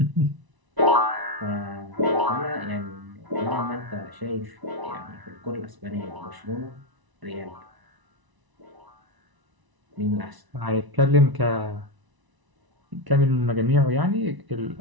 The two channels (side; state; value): left; late; 1.0 ms